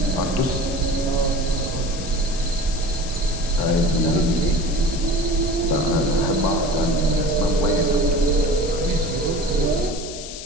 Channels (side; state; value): left; noise; hiss, 11 dB below the sound